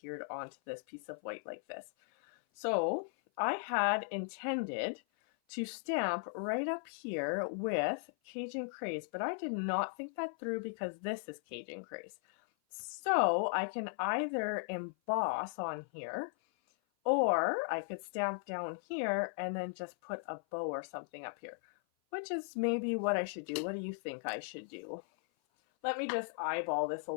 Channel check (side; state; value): right; silent; 53 dB below the other